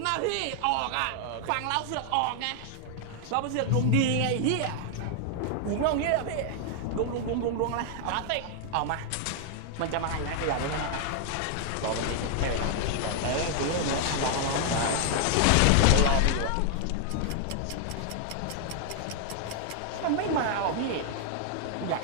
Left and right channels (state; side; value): different; both; correlation 0.00